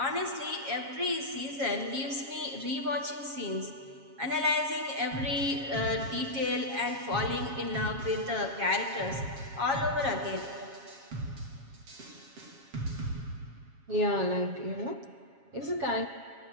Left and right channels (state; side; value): late; left; 7.3 ms